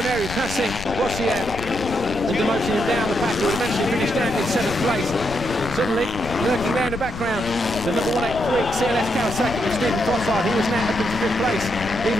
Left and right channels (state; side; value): noise; left; rumble, 10 dB below the sound